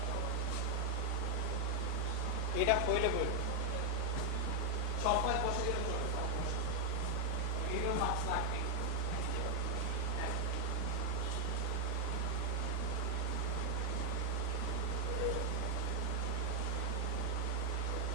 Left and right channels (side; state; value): both; different; correlation 0.00